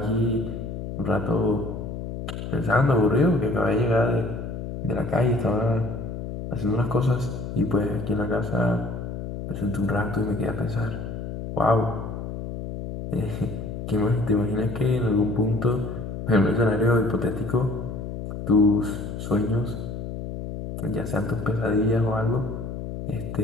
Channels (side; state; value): left; noise; hum, 7 dB below the sound